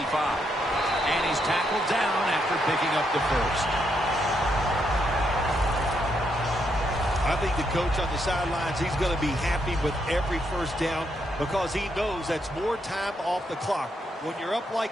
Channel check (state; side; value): normal; both; correlation 0.78